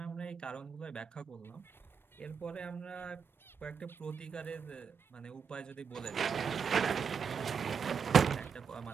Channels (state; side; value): quieter; left; 6.4 dB